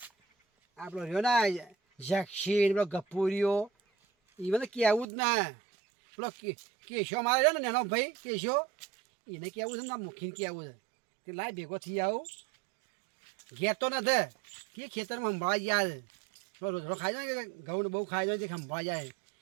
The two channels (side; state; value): left; drops out; at 5.1 s